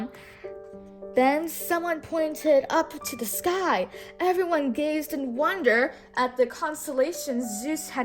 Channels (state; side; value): identical; both; correlation 1.00